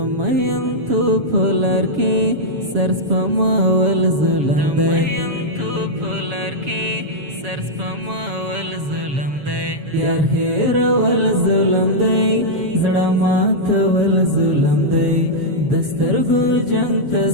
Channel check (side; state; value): left; late; 7.2 ms